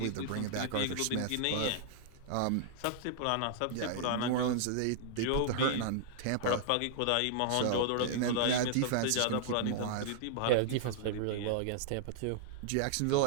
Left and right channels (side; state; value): both; different; correlation -0.01